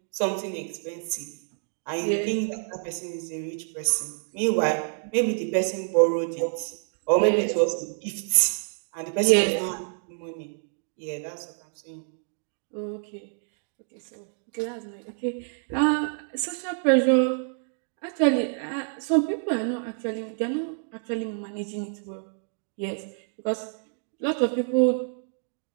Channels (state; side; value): silent; left; 60 dB below the other